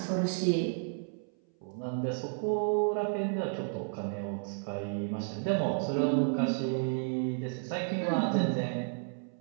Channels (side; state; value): left; silent; 56 dB below the other